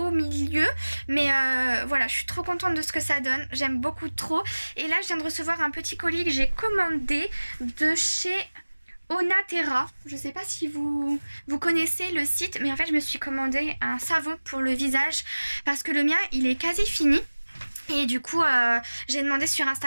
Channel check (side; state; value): both; inverted; correlation -1.00